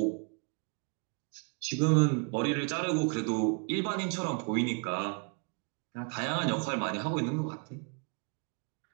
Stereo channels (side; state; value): left; quieter; 38.8 dB